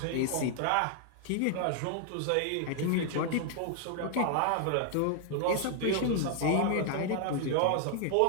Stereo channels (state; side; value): different; both; correlation 0.00